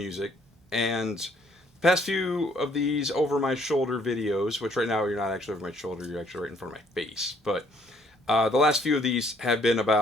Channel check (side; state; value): both; normal; correlation 0.64